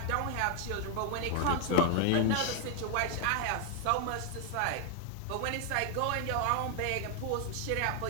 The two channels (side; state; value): both; different; correlation 0.00